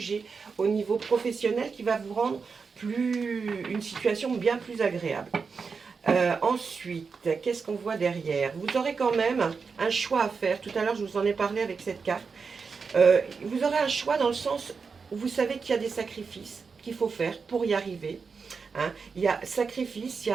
au niveau professionnel qui va vous rendre une situation bien plus agréable. Ensuite, qu'est-ce qu'on voit derrière? Vous aurez quand même un choix à faire. Tout à l'heure, je vous en ai parlé avec cette carte. Vous aurez un choix dans le sens où vous savez qu'il y a des sacrifices qu'il faut faire pour y arriver. Hein. Il y a sacrifice, il y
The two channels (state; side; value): quieter; left; 5.2 dB